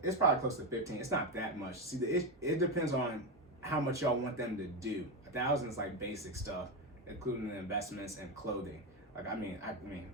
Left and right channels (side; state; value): both; normal; correlation 0.12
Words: probably close to 15. It's not that much. See, it depends on how much y'all want them to do. $1,000 is like basic stuff, including the investments and clothing. Like I mean,